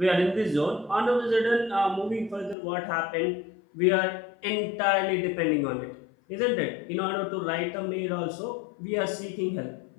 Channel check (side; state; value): right; drops out; at 2.6 s